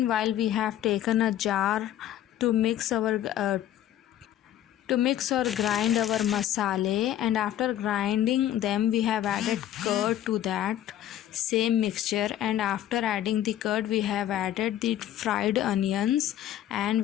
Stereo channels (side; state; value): right; quieter; 11.9 dB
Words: we have taken a jar to mix or grind our masala, and after grinding them we have added curd to that same mixture, and after adding the curd we have added the fried onions and